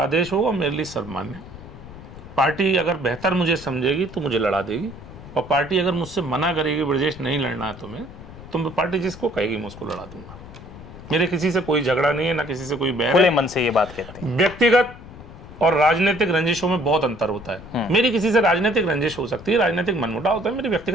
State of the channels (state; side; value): noise; left; rumble, 16 dB below the sound